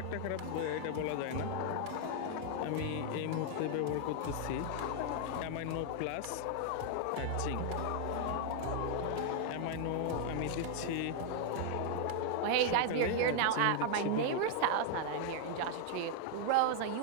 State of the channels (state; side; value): different; both; correlation 0.00